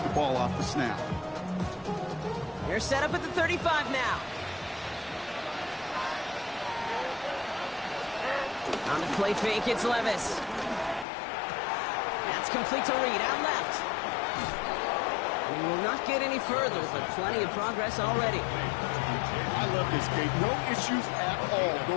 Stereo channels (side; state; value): right; drops out; at 11.1 s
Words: the ball off the snap. They're set up at the 35 now. On the play fake, it's Levis. That's complete to Reed, out left. We will not get any further, but plenty of progress already. I love this, Kate. No issues at all